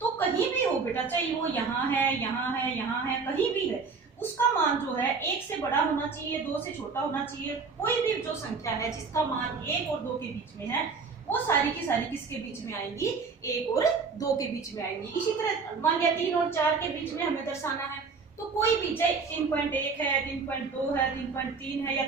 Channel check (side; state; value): left; quieter; 4.8 dB